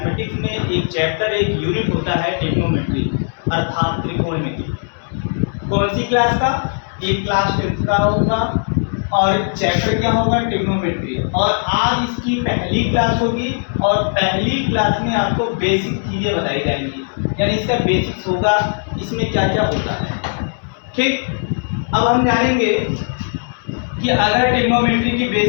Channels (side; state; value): right; silent; digital silence